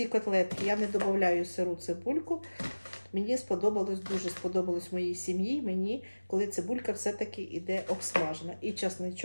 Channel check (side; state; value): both; inverted; correlation -1.00